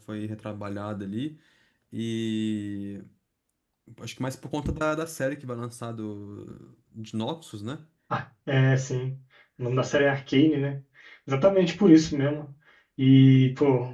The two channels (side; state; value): both; identical; correlation 1.00